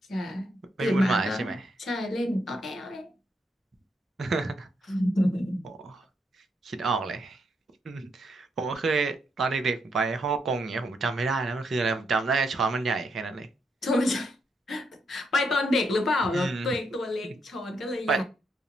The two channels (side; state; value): both; normal; correlation 0.78